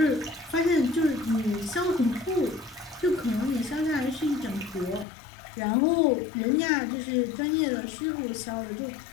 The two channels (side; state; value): right; drops out; at 5.1 s